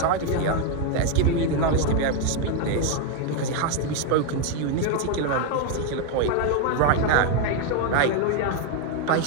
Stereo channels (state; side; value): different; both; correlation 0.01